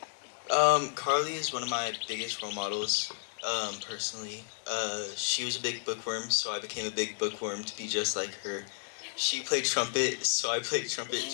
Carly is one of my biggest role models, personally. She was a big bookworm, so I became a big bookworm to be just like her. She played trumpet, so I played trumpet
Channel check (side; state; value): right; silent; digital silence